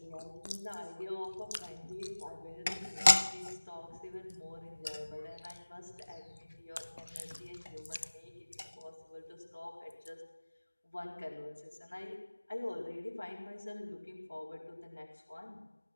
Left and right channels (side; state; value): both; inverted; correlation -1.00